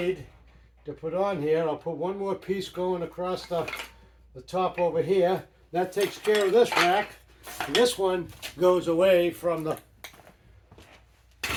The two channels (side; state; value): both; identical; correlation 1.00